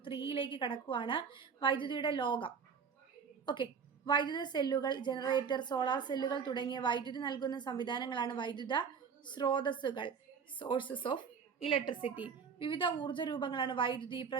3യിലേക്ക് കടക്കുവാണ്. വൈദ്യുതിയുടെ ലോകം. ഓക്കെ, വൈദ്യുത സെല്ലുകൾ, ജനറേറ്റർ, സോളാർ സെല്ലുകൾ തുടങ്ങിയ വൈദ്യുതി നൽകുന്ന സംവിധാനങ്ങളാണ് വൈദ്യുത സ്രോതസ്സുകൾ, സോഴ്സസ് ഓഫ് ഇലക്ട്രിസിറ്റി. വിവിധ ഊർജ്ജ രൂപങ്ങളാണ് വൈദ്യുതി,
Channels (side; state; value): left; quieter; 6.3 dB